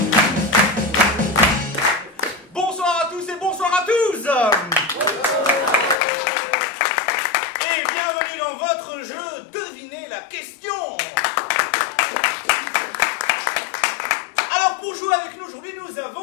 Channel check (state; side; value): drops out; right; at 6.0 s